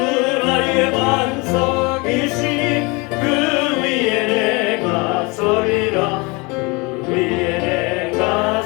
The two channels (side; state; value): right; quieter; 27.4 dB